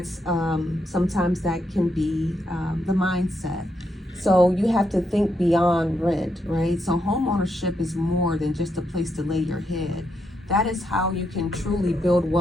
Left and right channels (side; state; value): both; normal; correlation 0.80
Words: sometimes that can be the mindset. So you have to think beyond rent, right? So home ownership is more than just a place to lay your head. That is how you can truly build